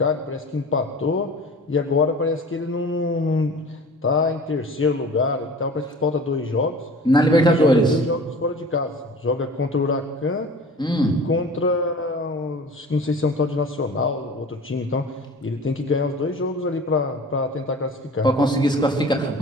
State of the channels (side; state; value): both; normal; correlation 0.41